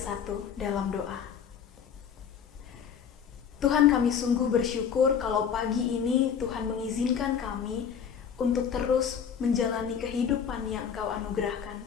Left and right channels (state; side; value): quieter; right; 7.6 dB